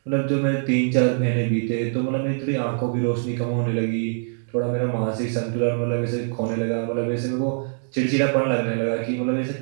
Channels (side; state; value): left; silent; digital silence